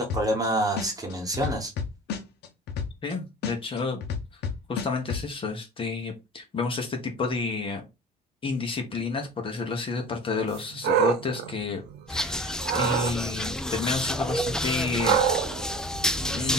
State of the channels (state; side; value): normal; both; correlation 0.38